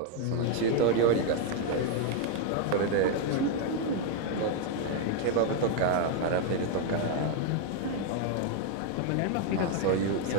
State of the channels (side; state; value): both; different; correlation 0.00